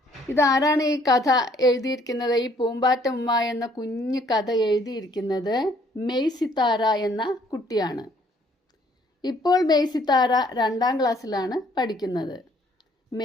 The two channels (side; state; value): both; normal; correlation 0.63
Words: ഇതാരാണ് ഈ കഥ എഴുതിയിരിക്കുന്നത്? ഈ പൂമ്പാറ്റ ഉമ്മ എന്ന കുഞ്ഞു കഥ എഴുതിയിരിക്കുന്നത് മെയ് സിത്താര എന്ന കുട്ടിയാണ്. ഇപ്പോൾ മെയ് സിത്താര 2ാം ക്ലാസ്സിലാണ് പഠിക്കുന്നത്.